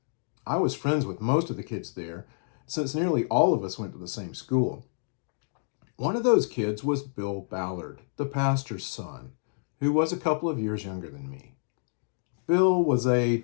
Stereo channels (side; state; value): right; silent; digital silence